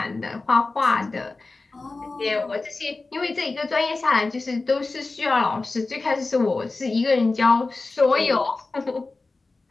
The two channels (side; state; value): right; quieter; 3.5 dB